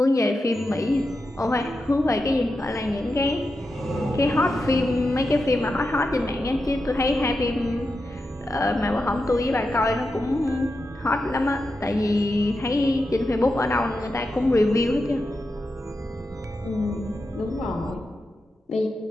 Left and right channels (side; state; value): both; normal; correlation 0.89